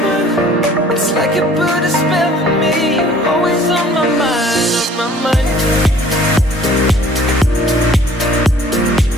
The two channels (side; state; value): both; normal; correlation 0.53